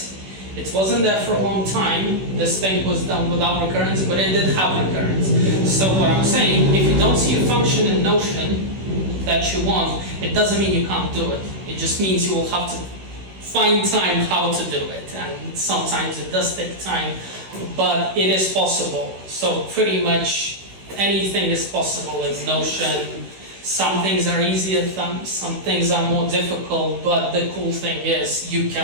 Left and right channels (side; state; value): left; late; 16 ms